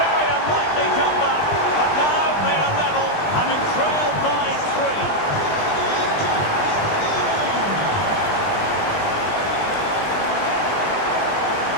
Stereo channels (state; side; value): late; right; 20 ms